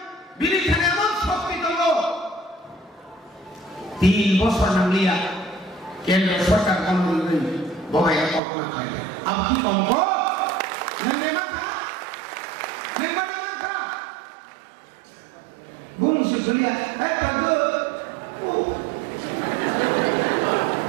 थानायमोन शक्ति दङ 3 বছর नांलिया केंद्र सरकार कामनि बबाया कल्पना खालाया अब की कमको नोंने माखा बुंसो गलिया बागो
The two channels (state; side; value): drops out; left; at 8.4 s